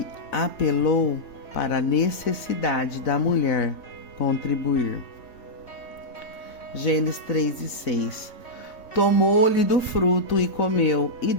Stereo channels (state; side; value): late; right; 3.6 ms